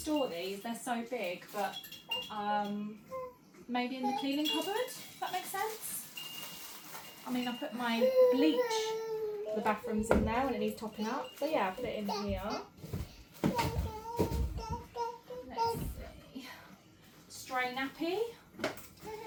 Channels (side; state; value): both; identical; correlation 1.00